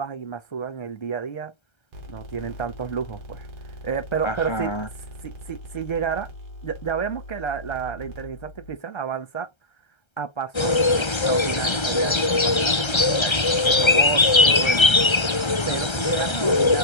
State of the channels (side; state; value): right; late; 1.3 ms